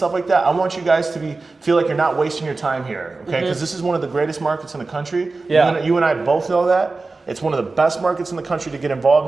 like that. I want you guys to feel like you're not wasting your time here, okay? Because this is one of the greatest markets in the country. Yeah. You and I both know that. It's one of the best markets in the country to get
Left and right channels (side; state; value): left; quieter; 3.7 dB